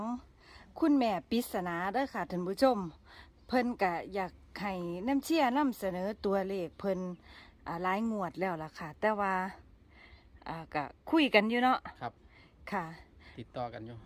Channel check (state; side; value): identical; both; correlation 1.00